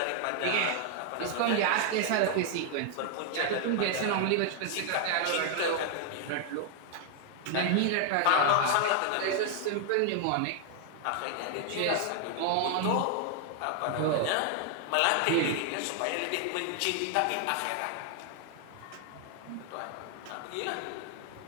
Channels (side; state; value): both; different; correlation 0.00